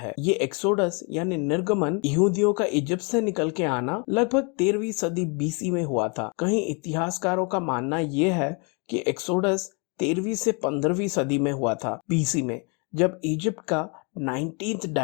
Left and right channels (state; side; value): quieter; right; 33.2 dB